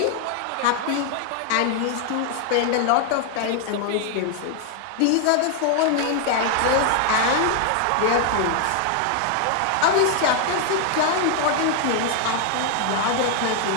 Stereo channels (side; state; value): both; different; correlation 0.00